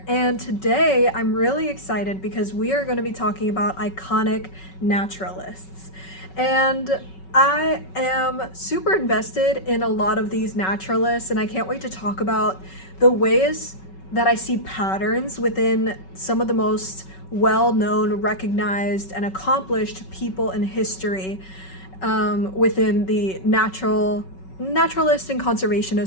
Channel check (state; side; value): late; right; 5.3 ms